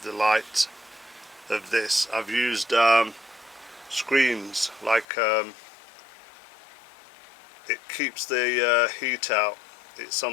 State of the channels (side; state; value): right; drops out; at 5.1 s